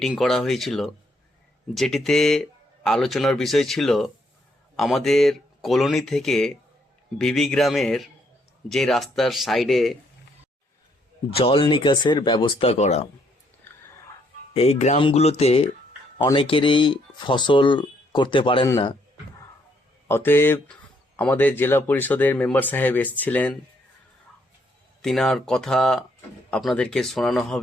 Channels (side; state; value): both; normal; correlation 0.71